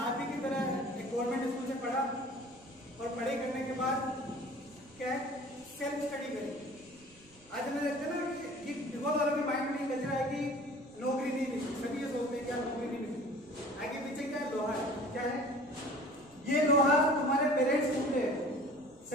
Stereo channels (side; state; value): right; noise; rumble, 26 dB below the sound